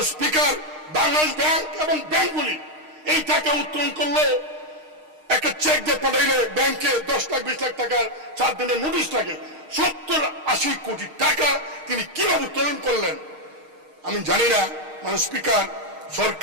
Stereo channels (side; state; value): left; late; 6.5 ms